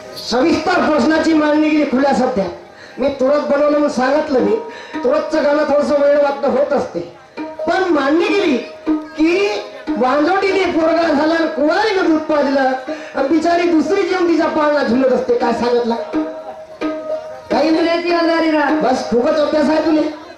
सविस्तर प्रश्नाची मांडणी केली खुल्या सध्या. मी तुरंत बनवलं म्हणून सांगितलं. मी तुरंतचं गाणं थोडस वेळ वाटणं होत असते, पण मांडणी केली की वांजोटीने पोरगा झाला, कुवारीनं दूध पाजलं, आणि बिचारी दुसरी जेवण तिच्या पाळणा झुलत असते. काय सांगितलं काही नाही. बस खूपच अभ्यास आहे तुले.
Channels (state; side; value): identical; both; correlation 1.00